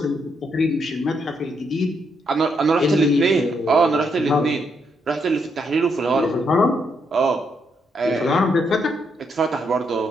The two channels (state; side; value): normal; both; correlation 0.77